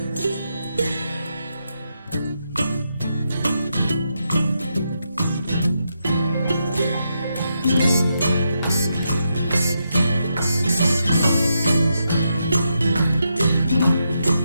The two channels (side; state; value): both; inverted; correlation -0.83